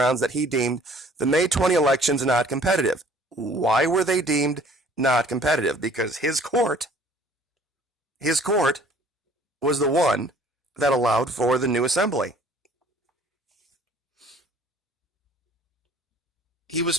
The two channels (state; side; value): normal; both; correlation 0.54